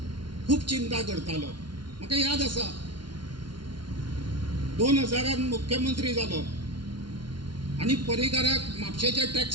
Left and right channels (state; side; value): late; left; 0.71 ms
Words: खूप चिंता करतालो म्हाका याद आसा 2000 मुख्यमंत्री जालो आणि पर्रीकाराक म्हापशेचे